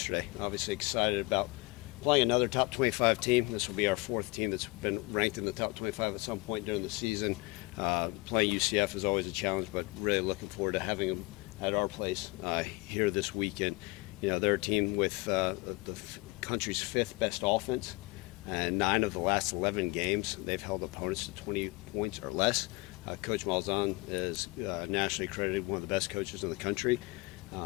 Obviously excited about playing another top 25 team. This will be our fourth team that's been ranked in the top 25 at some point during the season. Playing UCF is always a challenge, but really looking forward to having them at our place here this weekend. You know, they're a team with the country's fifth best offense. And 9 of the last 11 games, they've held opponents to 20 points or less. Coach Malzahn is nationally accredited one of the best coaches in the country.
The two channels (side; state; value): right; quieter; 24.5 dB